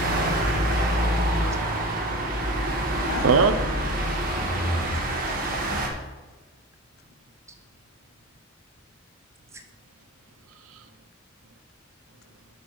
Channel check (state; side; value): normal; both; correlation 0.27